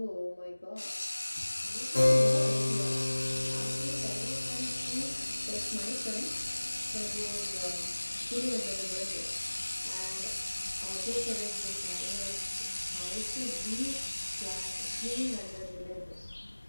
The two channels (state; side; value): inverted; both; correlation -1.00